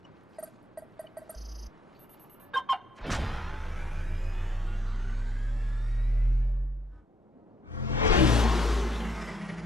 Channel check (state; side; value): normal; both; correlation 0.70